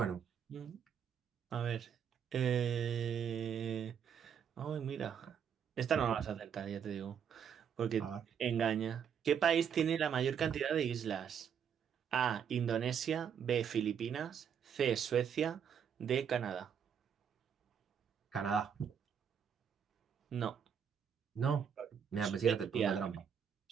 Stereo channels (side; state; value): left; quieter; 7.8 dB